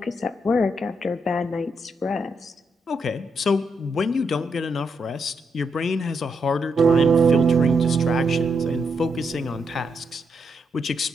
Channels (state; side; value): normal; both; correlation 0.80